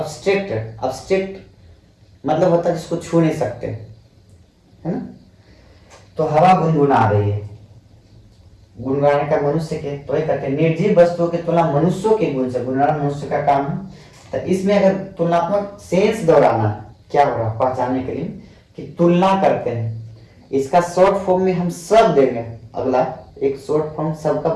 मतलब होता है जिसको छू नहीं सकते, है ना। तो हवा गुनगुना रही है, गुनगुनाने का मनुष्य के, तो ये कहते हैं निर्जीव वस्तुओं की तुलना मनुष्यों के गुण से, गुनगुनाना मनुष्य का काम है। तो इसमें अगर तुलनात्मक सेंस दोहराना, क्या हो रहा पहचानने के लिए कि तुलना करते हैं, इसका शॉर्ट फॉर्म में हम सब देंगे, अगला एक शॉर्ट फॉर्म सबका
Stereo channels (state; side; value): identical; both; correlation 1.00